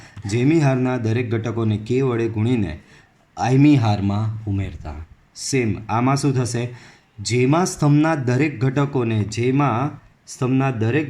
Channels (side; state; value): both; identical; correlation 1.00